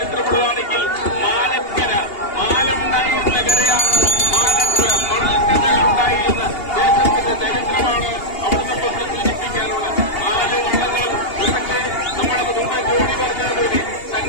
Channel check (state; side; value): late; right; 2.8 ms